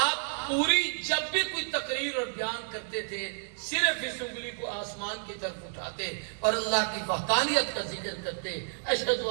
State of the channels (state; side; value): silent; left; 58 dB below the other